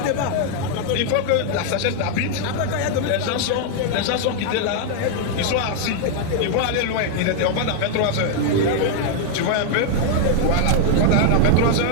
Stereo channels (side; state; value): both; different; correlation 0.00